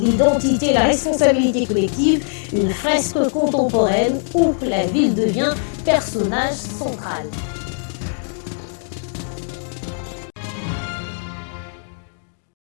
la responsabilité collective. Une fresque contemporaine où la ville devient personnage central.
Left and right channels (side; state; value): right; silent; digital silence